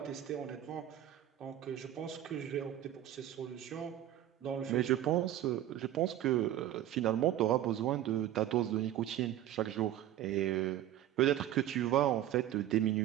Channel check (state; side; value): quieter; left; 12.5 dB